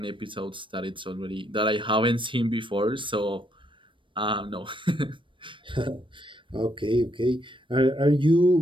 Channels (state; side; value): late; left; 0.24 ms